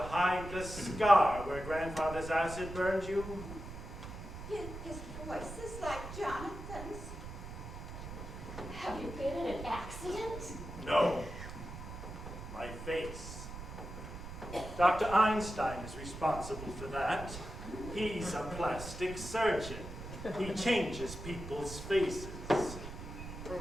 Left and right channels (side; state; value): right; noise; rumble, 10 dB below the sound